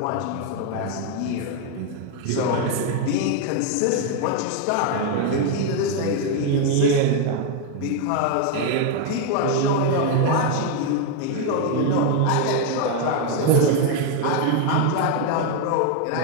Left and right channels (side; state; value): both; different; correlation 0.01